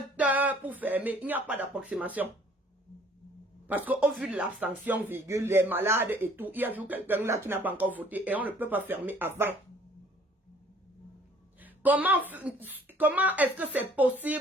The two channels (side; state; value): both; normal; correlation 0.57